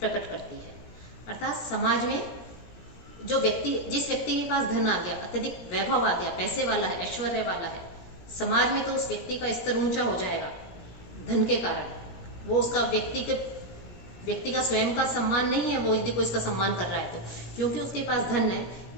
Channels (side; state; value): right; late; 17 ms